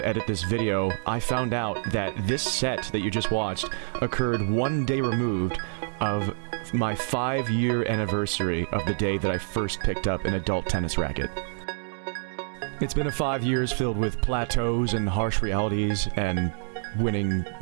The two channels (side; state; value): left; silent; digital silence